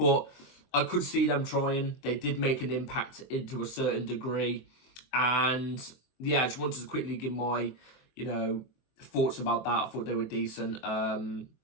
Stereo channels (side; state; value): right; late; 23 ms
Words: I could see them trying. They did make an impact into a certain degree, and yeah, I just wanted to quickly give my, you know, thoughts about that. I thought they were decent.